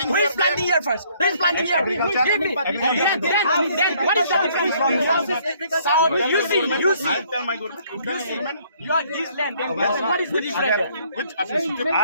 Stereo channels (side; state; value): both; inverted; correlation -0.63